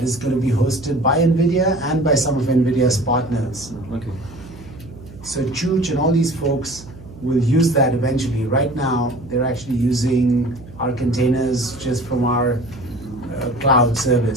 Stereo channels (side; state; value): right; noise; hum, 18 dB below the sound